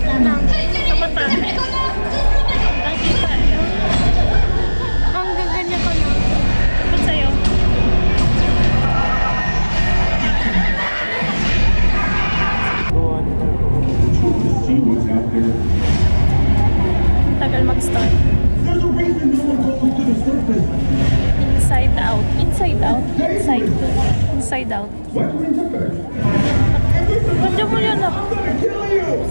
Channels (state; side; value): inverted; both; correlation -1.00